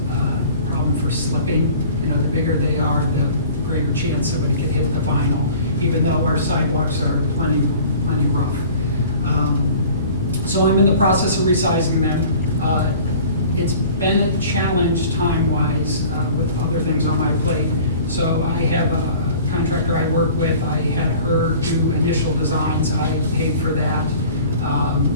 a problem for slipping. You know, the bigger they are, the greater chance somebody could hit the vinyl, even though our sidewalks are plenty rough. So I'm in the process of resizing them. It's been a challenge time-wise with other things on my plate. So I have a contractor I work with. I had her do initial designs. I paid for that.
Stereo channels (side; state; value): both; inverted; correlation -0.46